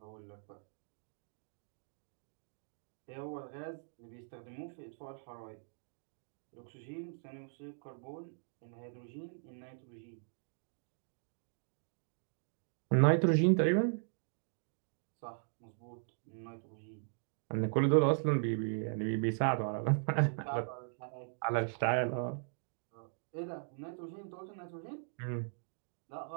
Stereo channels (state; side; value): silent; left; digital silence